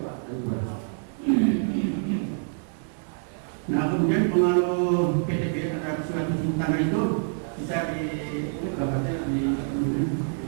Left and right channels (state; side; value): silent; left; 61 dB below the other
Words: Pak, nah kemudian pengaruh PTB terhadap surat izin tanah itu bisa di gambarnya di